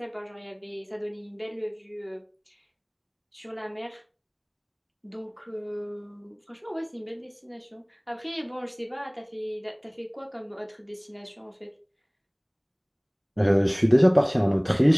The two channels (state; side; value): identical; both; correlation 1.00